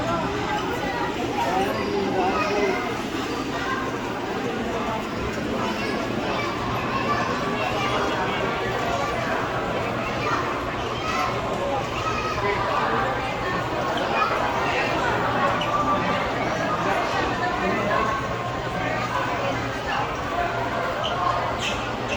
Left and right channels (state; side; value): identical; both; correlation 1.00